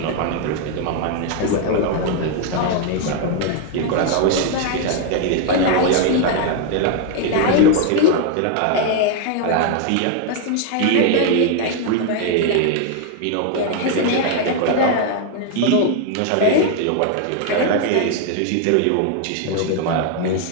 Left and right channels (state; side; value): different; both; correlation 0.01